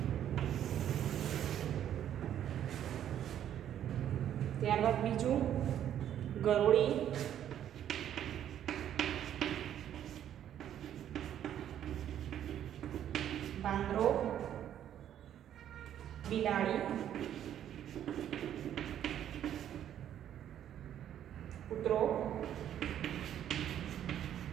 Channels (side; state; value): left; quieter; 10.5 dB